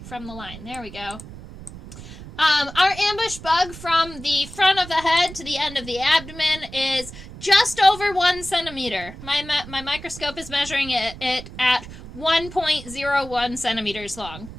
from the line. There we go. Our ambush bug from the front of the head to the end of the abdomen is just over 1 centimeter. My microscope is measuring it at 1.01 centimeters long.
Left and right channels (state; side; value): noise; right; rumble, 14 dB below the sound